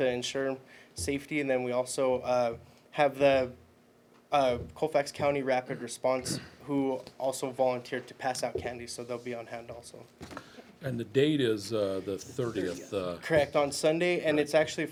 ensure safety. And then we also have the Colfax County Rapid Response, who also volunteered to pass out candy, so they'll be on hand also. And the date is the 30th, Correct, on Sunday, and it's actually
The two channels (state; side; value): identical; both; correlation 1.00